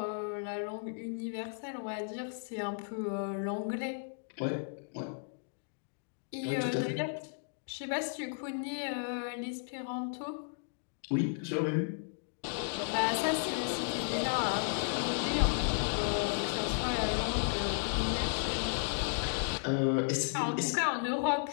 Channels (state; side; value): silent; right; digital silence